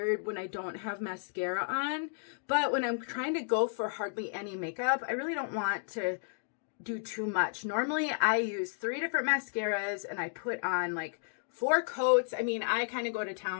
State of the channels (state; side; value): silent; right; digital silence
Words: when I don't have mascara on, but when I'm trying to go for hardly any makeup, I really don't want to do too much. Normally I use 3 different mascaras and I put on like 4 coats. I mean, I kind of go to